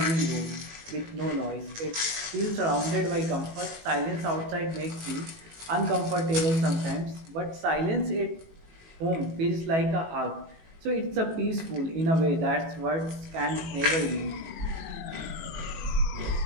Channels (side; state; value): left; late; 18 ms